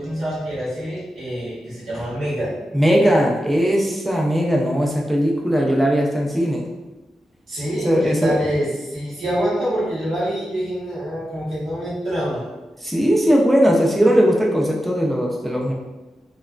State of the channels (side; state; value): both; normal; correlation 0.91